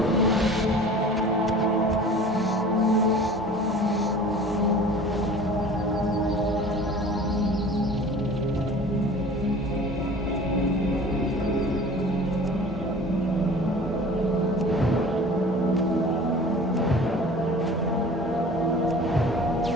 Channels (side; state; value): both; normal; correlation 0.43